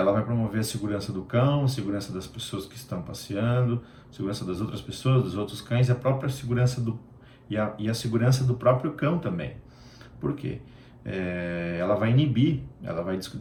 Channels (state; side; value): identical; both; correlation 1.00